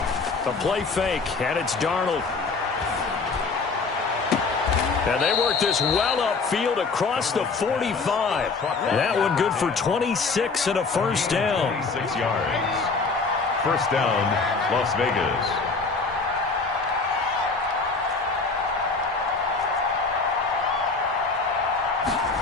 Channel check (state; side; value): quieter; right; 4.3 dB